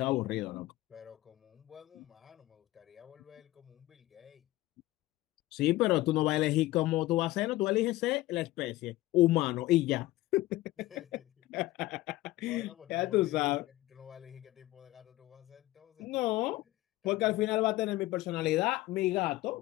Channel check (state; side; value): quieter; right; 17.5 dB